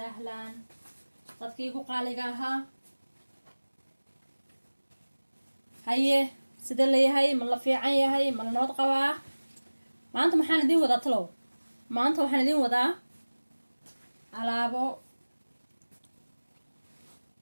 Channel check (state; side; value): inverted; both; correlation -1.00